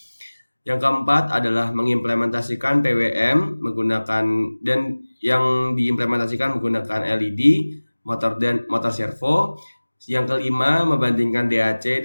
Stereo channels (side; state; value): both; inverted; correlation -1.00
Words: Yang keempat adalah mengimplementasikan PWM menggunakan dan yang diimplementasikan menggunakan LED, motor servo. Yang kelima, membandingkan DAC